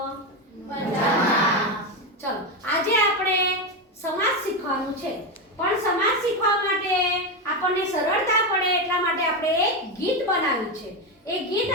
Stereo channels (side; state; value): both; normal; correlation 0.12